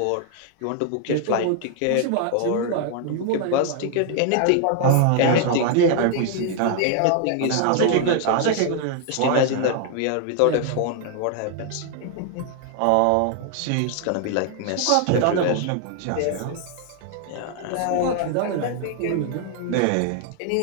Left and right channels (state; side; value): different; both; correlation 0.00